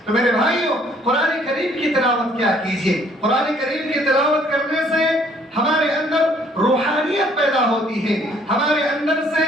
تو میرے بھائیوں قرآن کریم کی تلاوت کیا کیجئے، قرآن کریم کی تلاوت کرنے سے ہمارے اندر روحانیت پیدا ہوتی ہے، ہمارے اندر سے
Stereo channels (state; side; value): normal; both; correlation 0.62